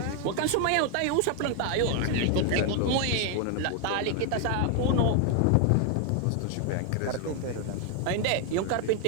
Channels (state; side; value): different; both; correlation 0.01